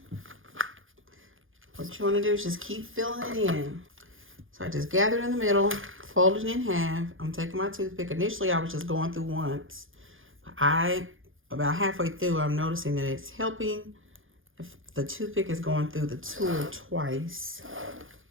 What you want to do is just keep filling it in. So I just gathered in the middle, folded it in half. I'm taking my toothpick. Initially, I was just going through once. About halfway through, I'm noticing that it's helping if the toothpick is going through the tool twice.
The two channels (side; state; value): left; late; 0.58 ms